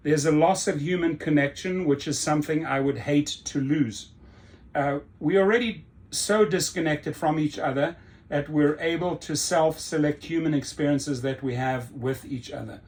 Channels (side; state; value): both; identical; correlation 1.00